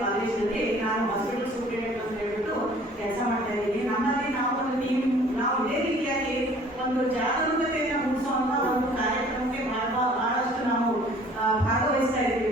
ಕಾಲೇಜಿನಲ್ಲಿ ನಾನು ಹಾಸ್ಪಿಟಲ್ ಸೂಪರಿಂಟೆಂಡೆಂಟ್ ಅಂತ ಹೇಳ್ಬಿಟ್ಟು ಕೆಲಸ ಮಾಡ್ತಾ ಇದ್ದೀನಿ. ನಮ್ಮಲ್ಲಿ ನಾವು ಒಂದು ಟೀಮ್, ನಾವು ಇದೇ ರೀತಿಯಾಗಿ ಒಂದು ಜಾಗರೂಕತೆಯನ್ನು ಮೂಡಿಸುವಂತ ಒಂದು ಕಾರ್ಯಕ್ರಮಕ್ಕೆ ಬಹಳಷ್ಟು ನಾವು ಭಾಗವಹಿಸ್ತಾ ಇದ್ದೀವಿ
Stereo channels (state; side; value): normal; both; correlation 0.53